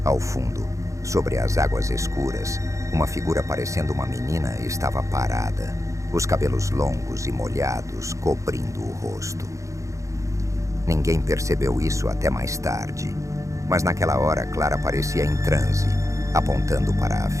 Ao fundo, sobre as águas escuras, uma figura parecendo uma menina estava parada, os cabelos longos e molhados cobrindo o rosto. Ninguém percebeu isso até mais tarde, mas naquela hora Clara parecia em transe, apontando para a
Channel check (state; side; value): late; left; 0.15 ms